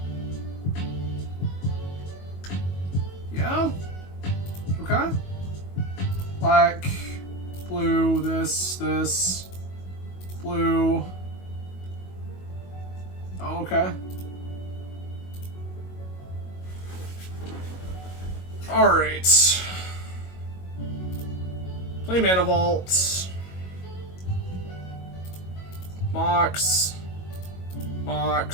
Yeah? Okay. Black, blue, this, blue. Oh, okay. Alright. Play Mana Vault. Mox.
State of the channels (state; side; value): late; right; 22 ms